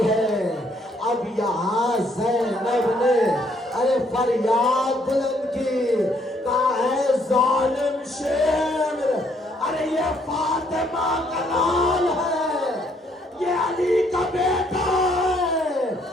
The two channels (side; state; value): both; normal; correlation 0.68